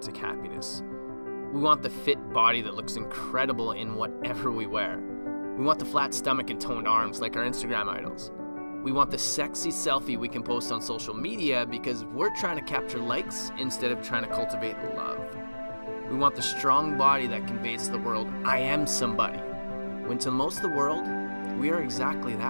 happiness. We want the fit body that looks incredible in whatever we wear. We want the flat stomach and toned arms like our Instagram idols. We want the sexy selfie we can post on social media because we're trying to capture likes instead of trying to cultivate love. We want the strong body that conveys to the world, I am somebody. When to most of the world, we are exactly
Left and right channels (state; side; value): inverted; both; correlation -1.00